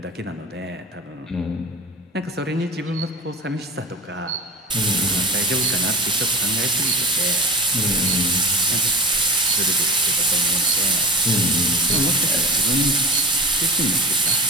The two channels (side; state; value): both; normal; correlation 0.30